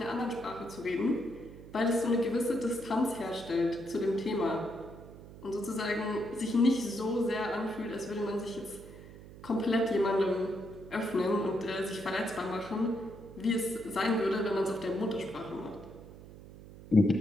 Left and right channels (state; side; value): noise; right; hum, 16 dB below the sound